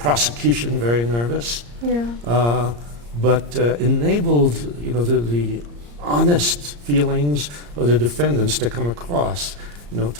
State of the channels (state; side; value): late; left; 34 ms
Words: very nervous, but enabled, you know, the honest feelings of the defendants to come across, you know,